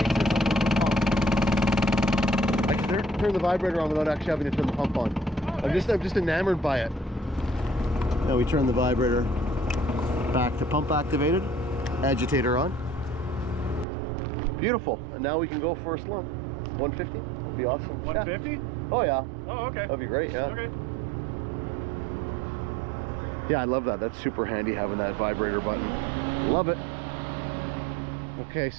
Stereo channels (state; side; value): drops out; left; at 13.9 s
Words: Turn the vibrator on without actually having to turn the pump on. I'm just enamored by it. Now we turn the vibrator back to pump activated, agitator on. Beautiful. And now we can go for a slump. 150 would be awesome. 150? Yeah. Oh yeah. Oh, okay. That'd be great. Yeah. Okay. Yeah, I love that. That's super handy having that vibrator button. Love it. Okay,